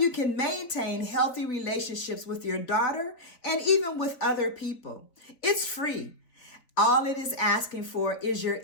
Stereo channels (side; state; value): right; late; 4.1 ms